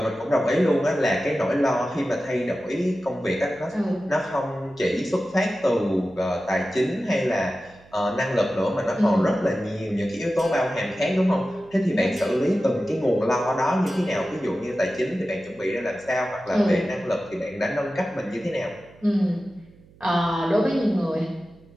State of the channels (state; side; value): noise; right; hum, 26 dB below the sound